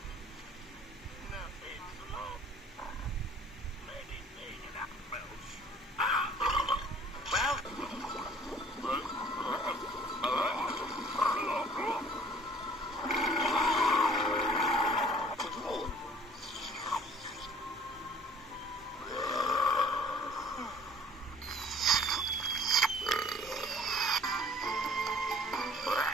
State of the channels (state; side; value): normal; both; correlation 0.53